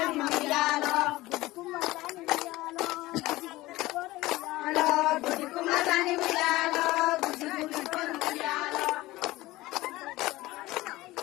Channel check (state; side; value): quieter; right; 18.5 dB